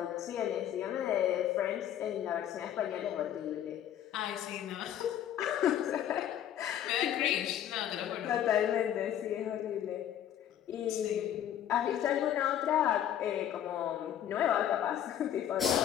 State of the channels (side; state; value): right; quieter; 10.6 dB